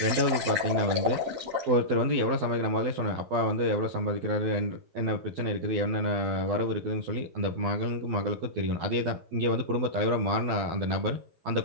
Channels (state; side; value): late; left; 12 ms